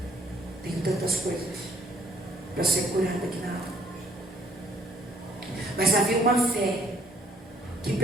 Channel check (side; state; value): both; normal; correlation 0.62